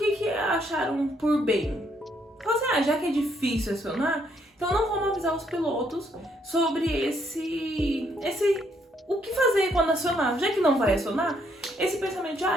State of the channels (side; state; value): both; normal; correlation 0.71